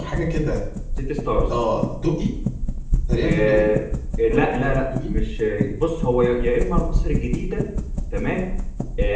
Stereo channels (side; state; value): both; identical; correlation 1.00